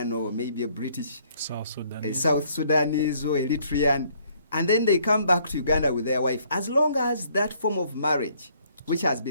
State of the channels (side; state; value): both; inverted; correlation -0.64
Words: or maybe a British, South Sudan. a South Sudanese or Eritrean, and then they come back to Uganda with their wife, as long as that form of marriage which has